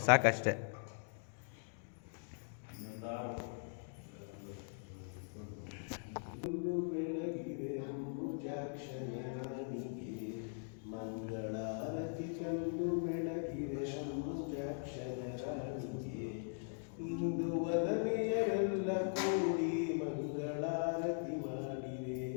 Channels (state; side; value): silent; right; digital silence